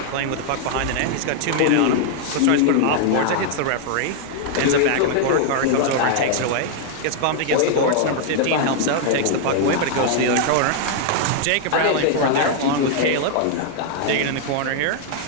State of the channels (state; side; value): different; both; correlation 0.00